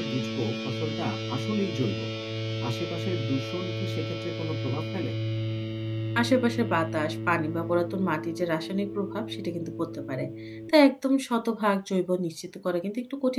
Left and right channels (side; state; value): both; identical; correlation 1.00